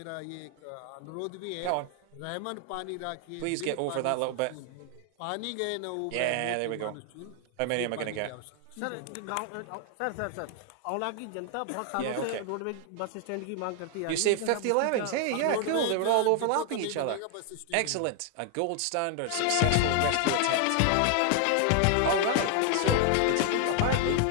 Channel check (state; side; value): different; both; correlation 0.00